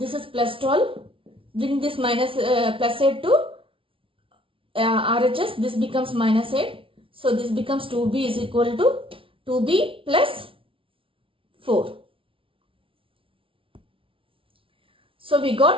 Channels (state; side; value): late; left; 0.25 ms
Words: is plus 12. Bring this minus plus 8 to RHS. This becomes minus 8. So this becomes 2B is equal to 2B plus 4. So we